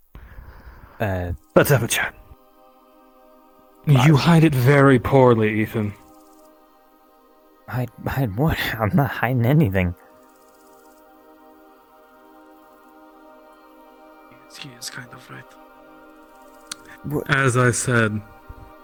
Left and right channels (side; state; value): both; identical; correlation 1.00